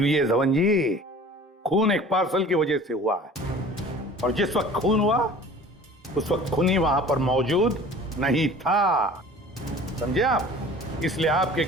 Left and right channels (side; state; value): both; normal; correlation 0.45